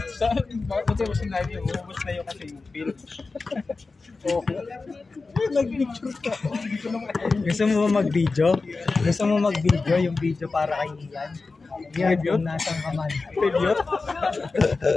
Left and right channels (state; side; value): quieter; right; 3.9 dB